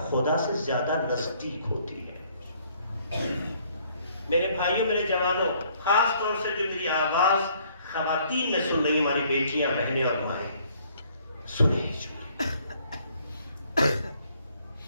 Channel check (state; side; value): inverted; both; correlation -0.63